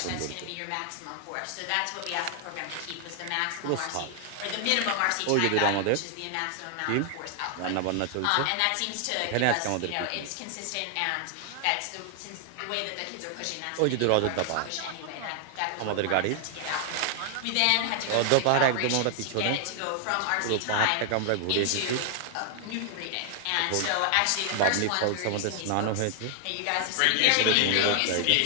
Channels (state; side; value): different; both; correlation 0.00